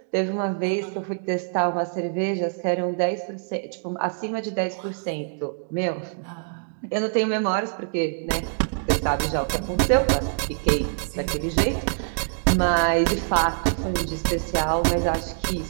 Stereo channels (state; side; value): silent; left; digital silence